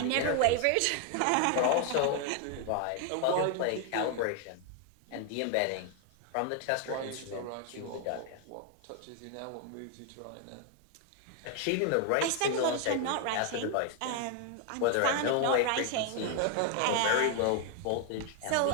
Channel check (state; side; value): different; both; correlation 0.00